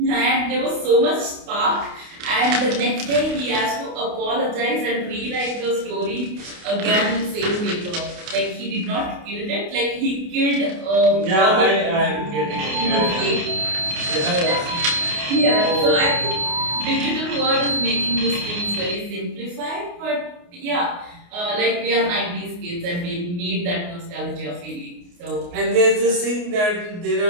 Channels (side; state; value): left; late; 28 ms